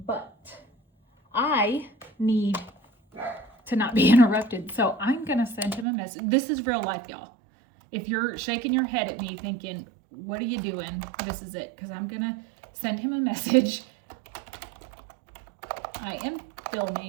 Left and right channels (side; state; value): left; drops out; at 5.9 s